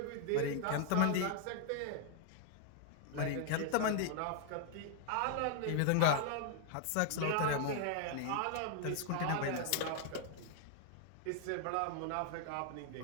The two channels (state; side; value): different; both; correlation 0.00